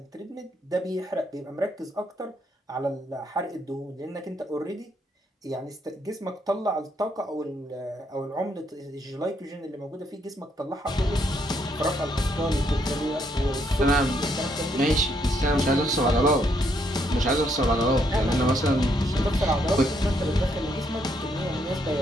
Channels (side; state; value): both; normal; correlation 0.73